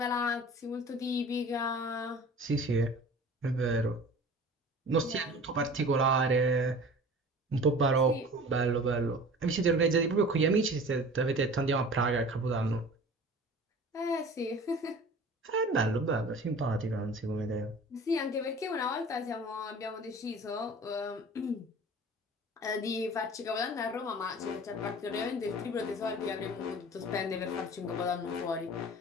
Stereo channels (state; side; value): normal; both; correlation 0.42